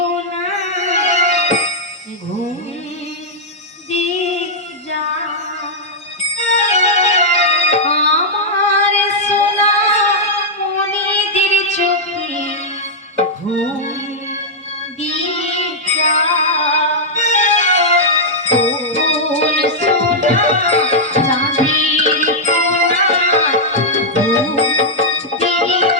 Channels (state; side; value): normal; both; correlation -0.06